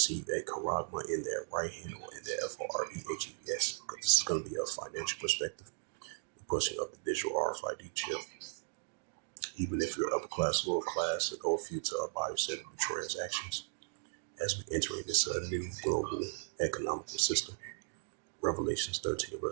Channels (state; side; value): silent; left; digital silence